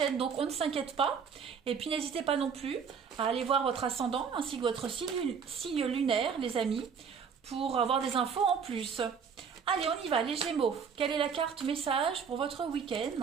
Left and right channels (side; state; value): left; quieter; 6.5 dB